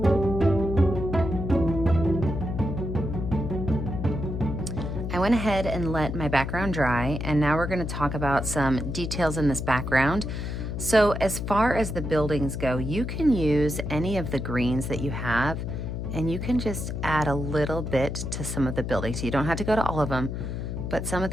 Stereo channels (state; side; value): noise; left; hum, 4 dB below the sound